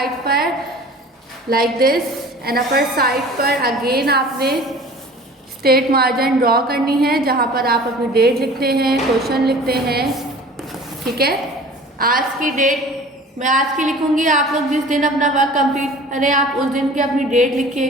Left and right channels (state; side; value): normal; both; correlation 0.44